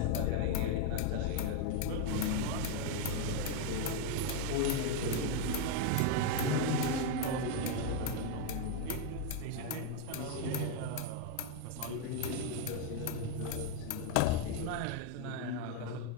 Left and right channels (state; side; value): different; both; correlation 0.01